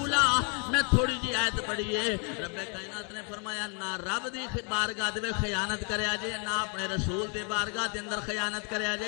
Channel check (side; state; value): right; quieter; 37.2 dB